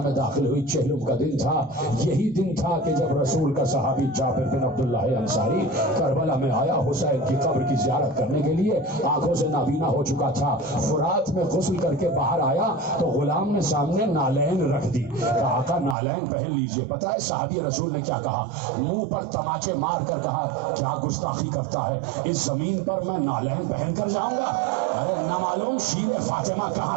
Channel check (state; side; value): drops out; left; at 16.0 s